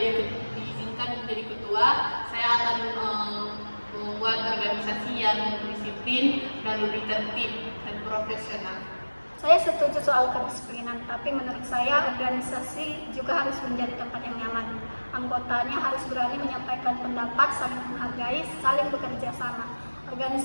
menjadi ketua, saya akan membuat organisasi yang disiplin dan lebih tertib dan profesional. Saya setuju soal kedisiplinan, tapi menurut saya organisasi juga harus menjadi tempat yang nyaman. Anggotanya harus berani menyampaikan pendapat, saling menghargai, saling bekerja sama.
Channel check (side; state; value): both; inverted; correlation -1.00